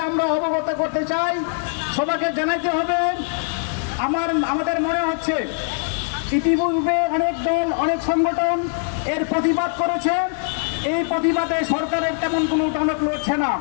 আমরা অবগত করতে চাই। সবাইকে জানাইতে হবে। আমাদের মনে হচ্ছে ইতিপূর্বে অনেক দল, অনেক সংগঠন এর প্রতিবাদ করেছে। এই প্রতিবাদে সরকারের তেমন কোনো টনক লড়ছে না।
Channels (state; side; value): silent; right; 64 dB below the other